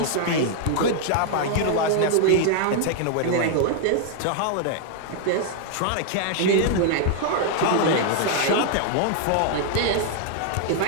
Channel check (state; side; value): different; both; correlation 0.00